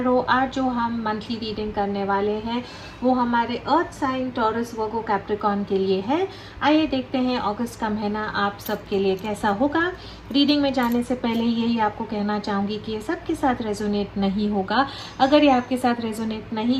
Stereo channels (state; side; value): identical; both; correlation 1.00